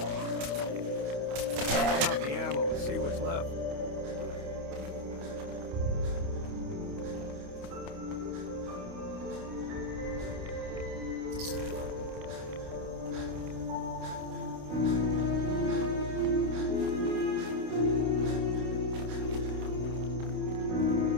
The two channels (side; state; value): left; late; 28 ms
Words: Count the ammo and see what's left.